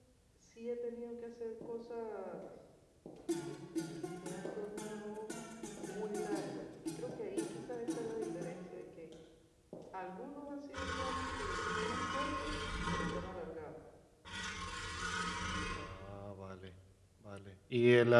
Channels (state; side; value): identical; both; correlation 1.00